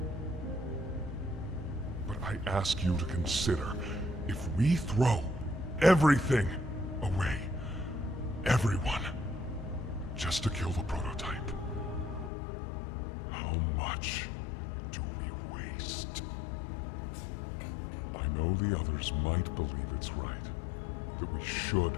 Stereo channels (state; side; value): drops out; right; at 12.3 s